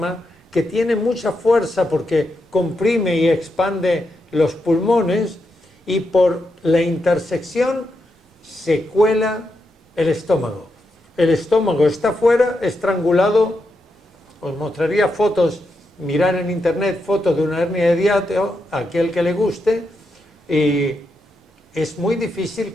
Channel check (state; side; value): normal; both; correlation 0.84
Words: que tiene mucha fuerza porque comprime y expande los pulmones, y por la intersección se cuela el estómago. El estómago está fuera, estrangulado. Os mostraría fotos, mirar en internet fotos de una hernia de hiato, a aquel que le guste, y es muy difícil